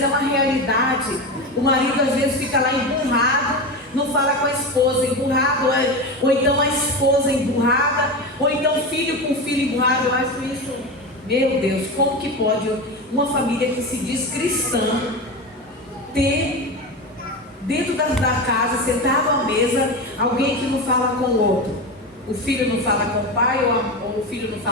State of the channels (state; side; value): normal; both; correlation 0.22